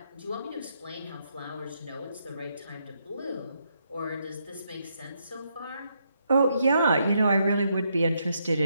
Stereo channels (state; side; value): inverted; both; correlation -0.77